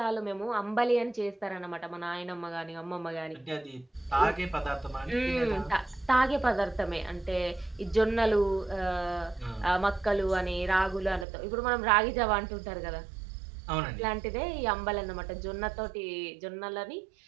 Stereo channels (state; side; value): drops out; left; at 11.2 s